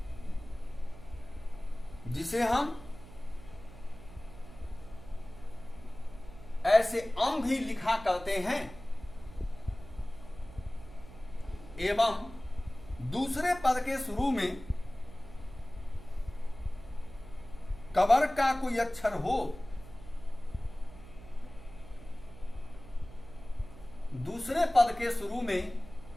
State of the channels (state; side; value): noise; right; hum, 17 dB below the sound